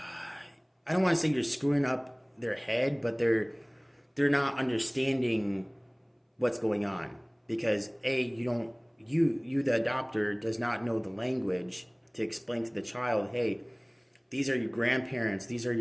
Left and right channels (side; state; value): both; identical; correlation 1.00